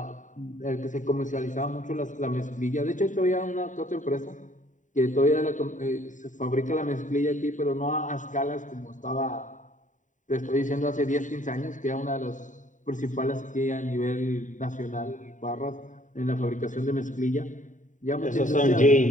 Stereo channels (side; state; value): right; late; 0.36 ms